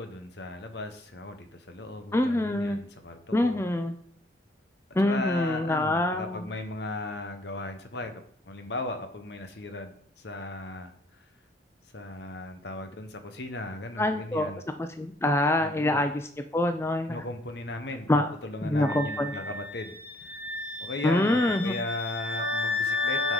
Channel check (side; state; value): both; normal; correlation 0.63